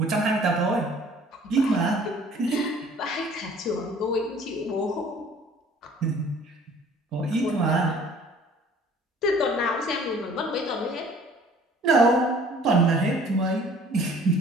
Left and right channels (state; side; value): normal; both; correlation 0.52